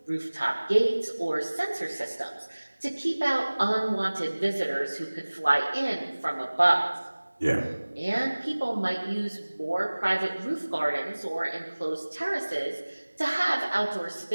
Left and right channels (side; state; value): both; inverted; correlation -1.00